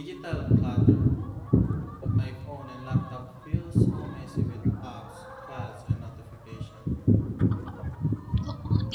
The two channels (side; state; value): both; identical; correlation 1.00